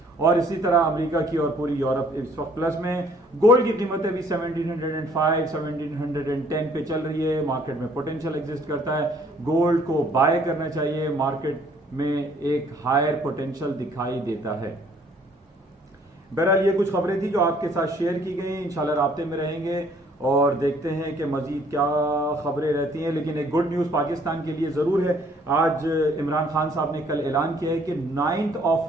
और इसी तरह अमेरिका की और पूरी यूरोप इस वक्त प्लस में। गोल्ड की कीमतें भी 1705 1710 पे चल रही है। मार्केट में पोटेंशियल एग्जिस्ट करता है, गोल्ड को बाय करना चाहिए, मार्केट में एक हायर पोटेंशियल दिखाई देता है। बहरहाल ये कुछ खबरें थी जो आपके साथ शेयर की गई। इंशाल्लाह राब्ते में रहेंगे और देखते हैं कि मजीद क्या खबरें रहती हैं। लेकिन एक गुड न्यूज़ पाकिस्तान के लिए ज़रूर है। आज इमरान खान साहब ने कल ऐलान किया है कि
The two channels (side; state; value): both; normal; correlation 0.61